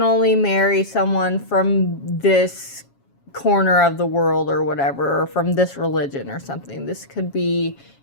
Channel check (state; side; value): late; right; 7.2 ms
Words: only marry someone from this corner of the world or whatever, or from this religion or something. This could be